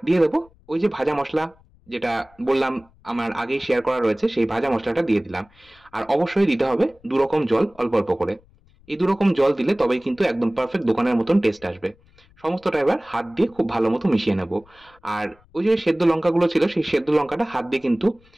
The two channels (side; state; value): left; noise; rumble, 30 dB below the sound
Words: দিয়ে দেবো ওই যে ভাজা মসলা যেটা বললাম আমার আগেই শেয়ার করা রয়েছে সেই ভাজা মশলাটা দিয়ে দিলাম। আর অবশ্যই দিতে হবে 2 রকম জল অল্প অল্প করে। এই 2 রকম জল দিলে তবেই কিন্তু একদম পারফেক্ট দোকানের মতন টেস্ট আসবে। সমস্তটা এবার হাত দিয়ে খুব ভালো মতো মিশিয়ে নেব। আর ওই যে সেদ্ধ লঙ্কাগুলো ছিল সেই সেদ্ধ লঙ্কাটা হাত দিয়ে কিন্তু